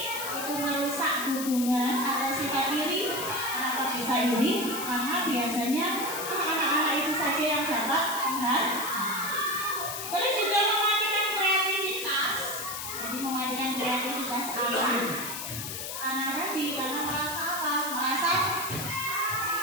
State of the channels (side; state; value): left; noise; hiss, 6 dB below the sound